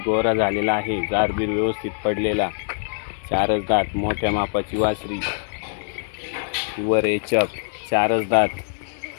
झालेला आहे. जारबीर व्यवस्थित पडलेला. चारच दात मोठ्या मापाची वासरी. वर एचप चारच दात.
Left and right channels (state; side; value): silent; right; 63 dB below the other